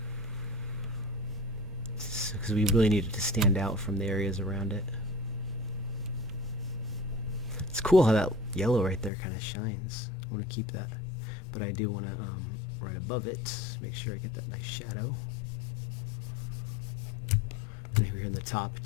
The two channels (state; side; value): drops out; right; at 9.1 s